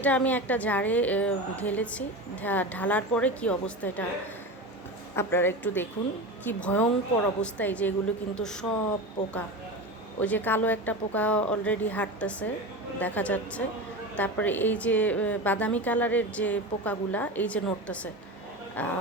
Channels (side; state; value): both; normal; correlation 0.26